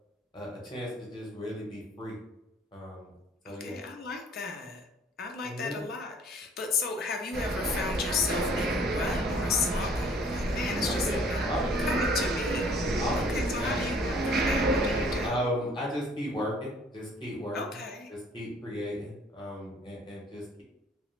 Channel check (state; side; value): normal; both; correlation 0.56